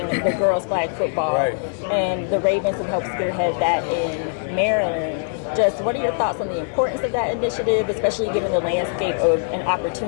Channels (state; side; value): silent; right; digital silence